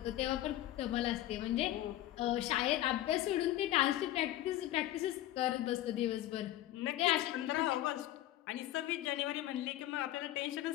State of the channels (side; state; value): right; quieter; 14.3 dB